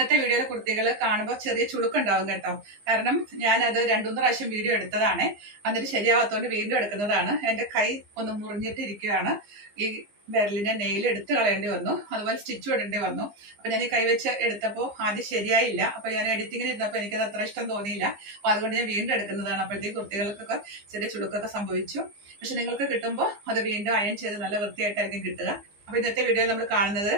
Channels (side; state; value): left; late; 15 ms